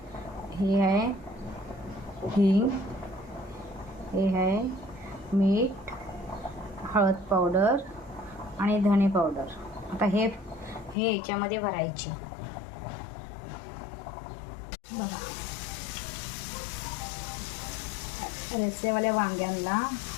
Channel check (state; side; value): drops out; right; at 11.0 s